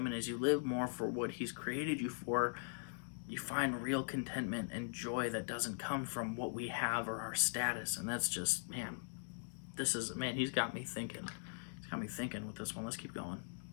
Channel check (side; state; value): right; silent; digital silence